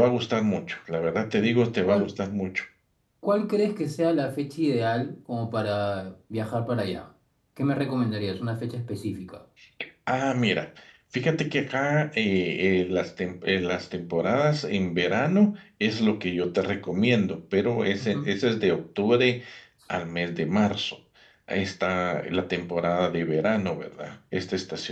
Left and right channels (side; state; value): both; identical; correlation 1.00